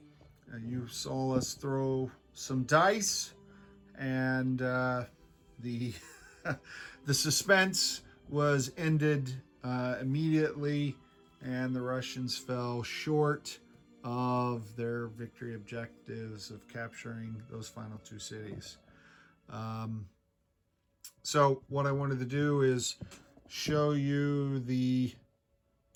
you saw us throw some dice, and the the suspense was ended immediately, and the Russians fell short of their victory objectives of capturing those final two cities. So what I wanted to do is show you the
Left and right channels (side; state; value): both; identical; correlation 1.00